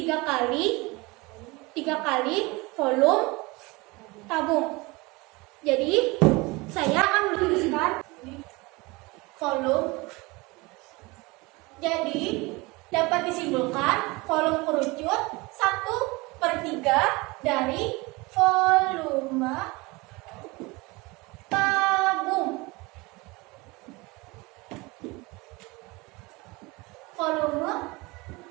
kali volume tabung. Jadi saya akan menuliskan volume. Jadi dapat disimpulkan volume kerucut 1/3 dari volume tabung. Volume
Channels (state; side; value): quieter; left; 24.2 dB